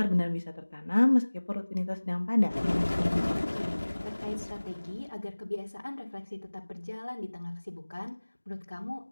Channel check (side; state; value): both; inverted; correlation -1.00